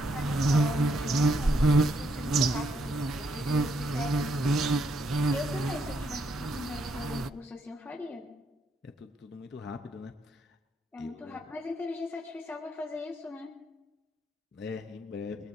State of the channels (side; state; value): both; normal; correlation 0.75